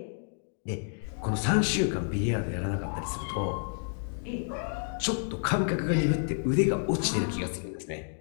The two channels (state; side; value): silent; right; 58 dB below the other